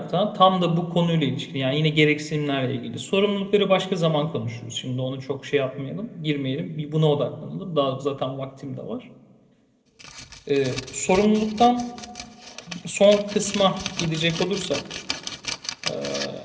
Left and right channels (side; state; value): both; identical; correlation 1.00